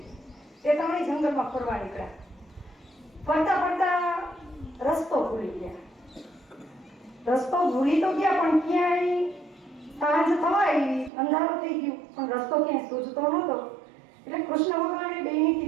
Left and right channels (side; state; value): left; drops out; at 11.1 s